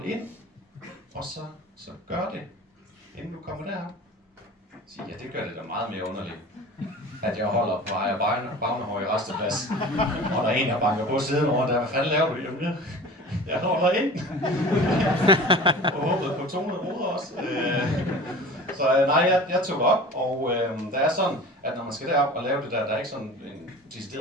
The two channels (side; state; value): both; normal; correlation 0.39